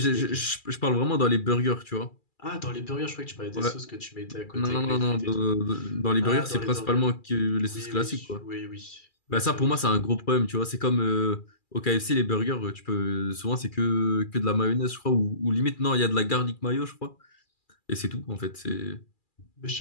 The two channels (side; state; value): right; late; 2.4 ms